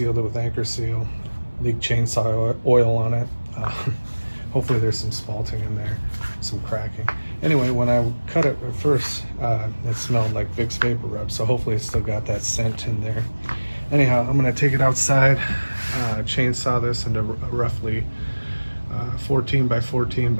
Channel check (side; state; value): both; inverted; correlation -1.00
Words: it with anchor seal, leaked chainsaw oil on it. Hopefully there's some spalting in there, some cracking. Anyway, when I cut it at first, it smelled like Vick's Vapor Rub, so hopefully it's still got that scent in there. Anyhow, I'm gonna take it outside, chainsaw this into a roughly 14 by 14